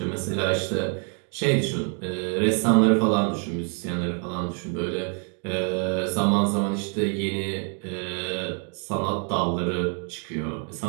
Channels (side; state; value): left; quieter; 39.5 dB